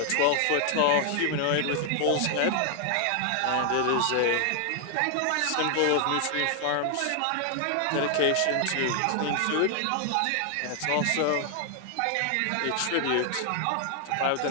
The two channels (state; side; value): different; both; correlation 0.00